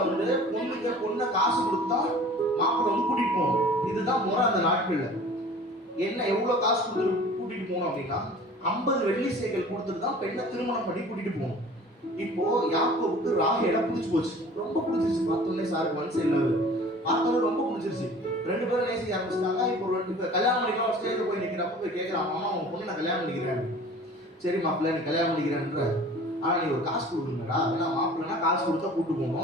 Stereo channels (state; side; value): normal; both; correlation 0.45